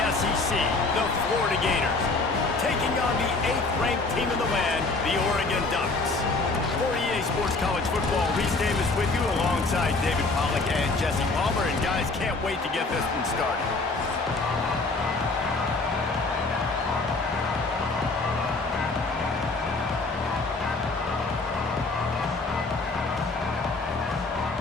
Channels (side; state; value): right; quieter; 3.5 dB